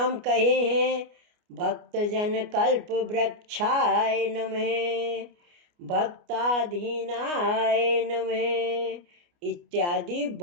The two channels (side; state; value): left; late; 29 ms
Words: कहे हैं। भक्तजन कल्प वृक्षाय नमः, भक्ताधीनाय नमः इत्यादि